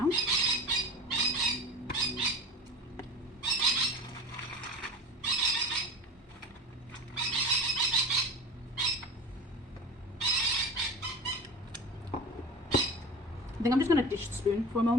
I think I'm just going to dish the spoon for a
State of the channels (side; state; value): both; normal; correlation 0.33